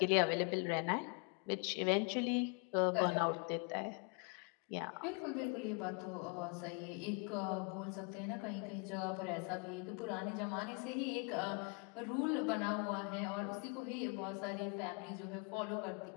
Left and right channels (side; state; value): right; quieter; 33.0 dB